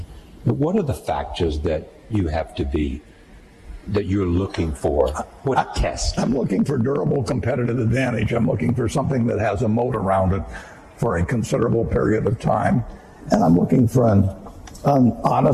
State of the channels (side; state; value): both; identical; correlation 1.00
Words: what are the factors that you have to be, that you're looking for? What test? I'm looking for durable competitive advantage. I'm looking for something that has a moat around it for a considerable period of time. And I'm looking for an